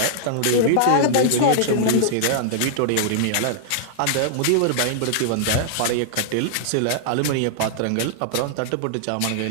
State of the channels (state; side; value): different; both; correlation -0.01